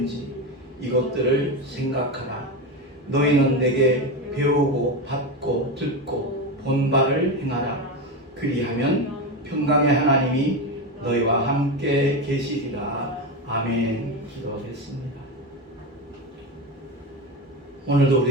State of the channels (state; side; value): normal; both; correlation 0.17